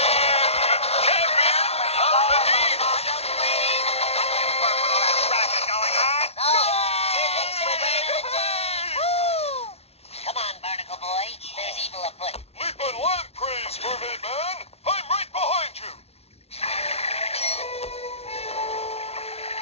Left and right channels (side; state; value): right; late; 0.30 ms